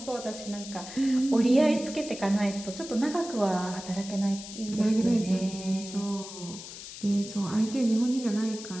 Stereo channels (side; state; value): left; noise; hiss, 12 dB below the sound